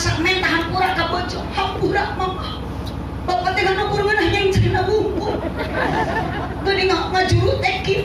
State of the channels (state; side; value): identical; both; correlation 1.00